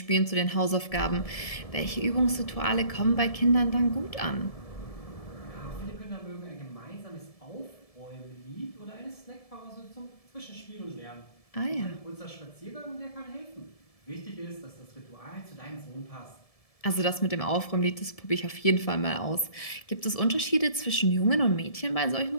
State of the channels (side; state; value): right; late; 1.7 ms